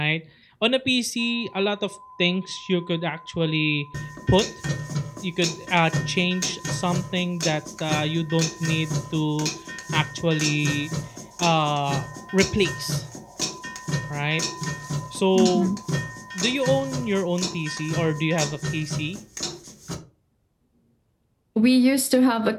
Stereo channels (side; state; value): both; identical; correlation 1.00